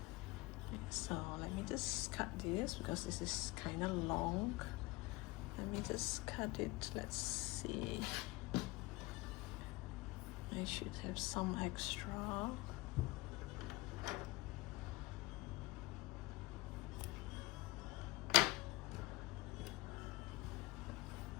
Okay, so let me just cut this because this is kind of long. Let me just cut it. Let's see. I should have some extra.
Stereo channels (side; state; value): right; quieter; 21.4 dB